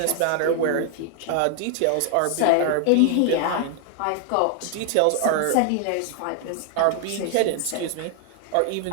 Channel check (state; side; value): different; both; correlation 0.00